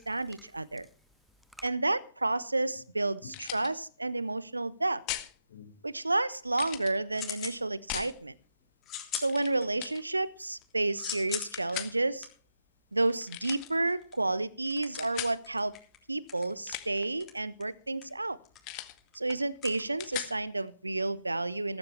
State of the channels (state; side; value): inverted; both; correlation -0.89